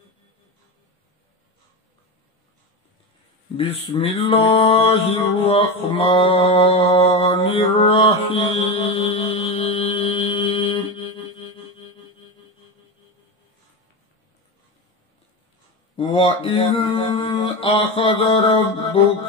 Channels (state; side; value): normal; both; correlation 0.19